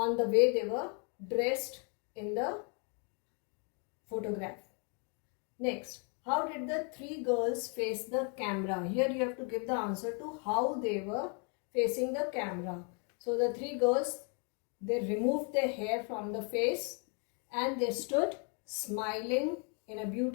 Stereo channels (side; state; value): right; quieter; 37.9 dB